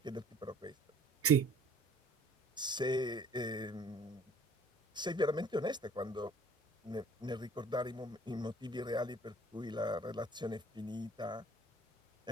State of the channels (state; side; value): normal; both; correlation 0.54